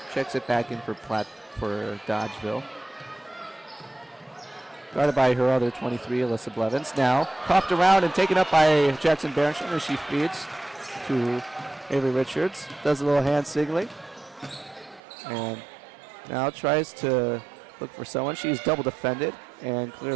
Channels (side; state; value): left; drops out; at 15.0 s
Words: checks it back in for Dodgeville. Guarded by her other 23, Alyssa Blevins. Now coughed around and taken up by Jackson Berenson as she feeds to Avery Richards. Does a little hand signaling. And now tries to look for someone. She's double defended. And